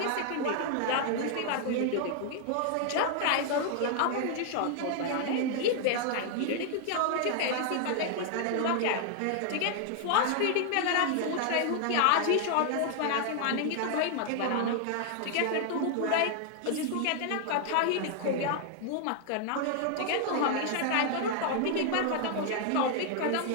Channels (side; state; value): both; different; correlation 0.00